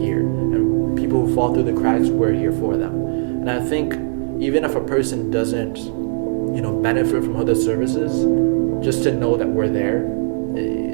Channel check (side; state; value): left; silent; digital silence